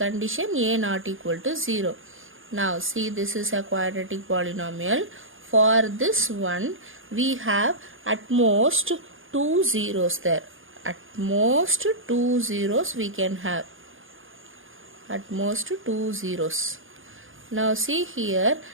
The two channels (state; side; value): late; left; 0.58 ms